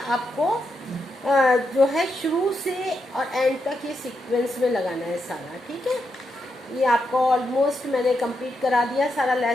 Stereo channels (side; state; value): both; normal; correlation 0.83